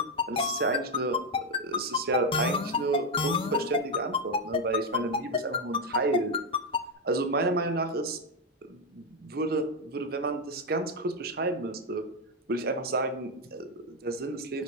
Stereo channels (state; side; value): normal; both; correlation 0.06